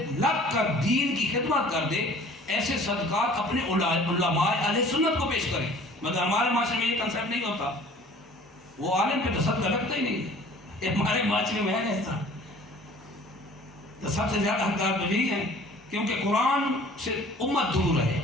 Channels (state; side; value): normal; both; correlation 0.50